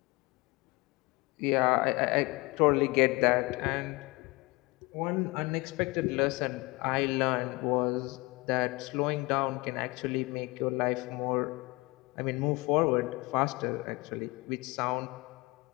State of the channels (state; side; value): quieter; right; 24.0 dB